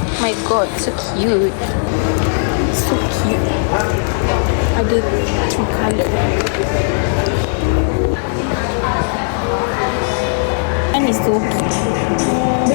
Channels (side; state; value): right; silent; digital silence